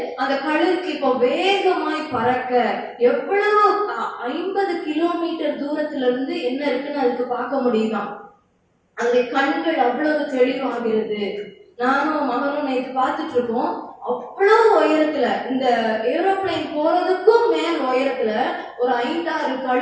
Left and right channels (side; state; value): both; identical; correlation 1.00